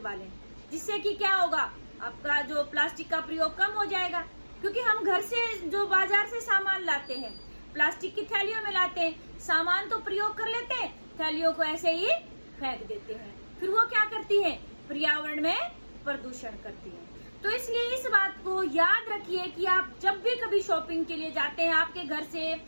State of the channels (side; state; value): both; inverted; correlation -1.00